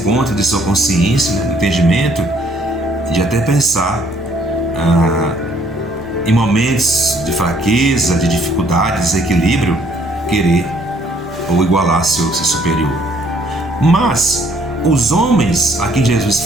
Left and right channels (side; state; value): both; normal; correlation 0.64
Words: de sua consciência, né, entendimento, de até pensar em momentos de fraqueza, de dificuldade, de desequilíbrio, querer ou igualar seu superior. Mas os homens a quem Jesus